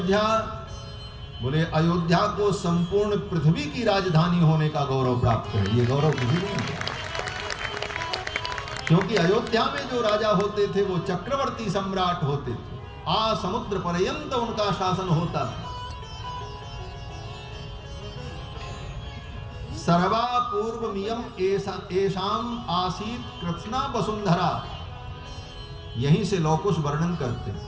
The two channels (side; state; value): both; identical; correlation 1.00